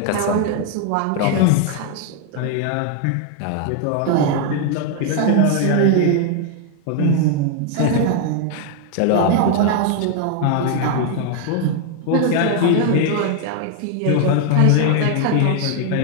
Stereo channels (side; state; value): both; different; correlation 0.00